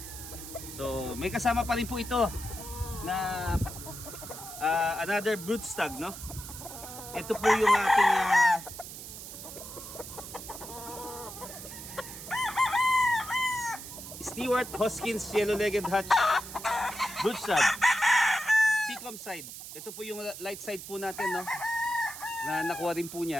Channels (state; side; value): noise; right; hiss, 11 dB below the sound